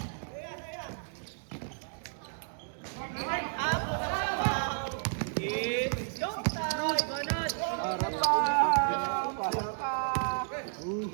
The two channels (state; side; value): silent; left; digital silence